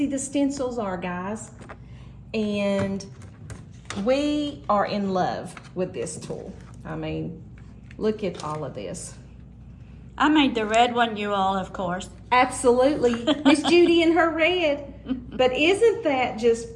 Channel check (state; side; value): identical; both; correlation 1.00